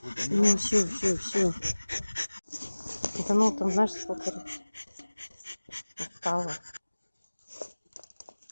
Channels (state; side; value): inverted; both; correlation -1.00